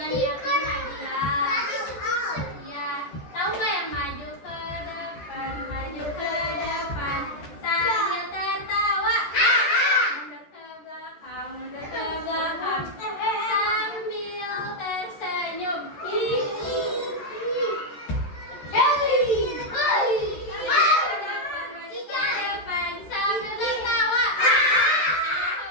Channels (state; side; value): late; right; 14 ms